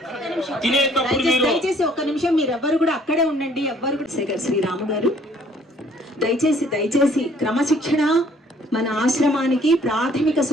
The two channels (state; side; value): normal; both; correlation 0.59